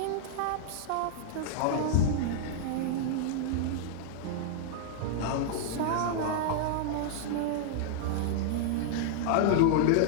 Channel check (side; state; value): both; different; correlation -0.01